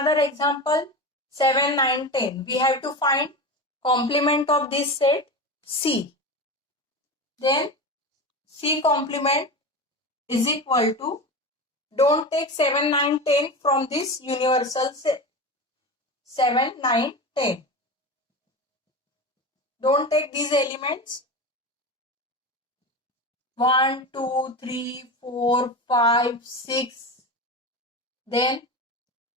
example. 7, 9, 10. We have to find complement of this set C. Then C complement is equal to, don't take 7, 9, 10 from this universal set. 7, 9, 10. Don't take these elements. 1, 2, 3, 4, 5, 6. Then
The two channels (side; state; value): both; normal; correlation 0.25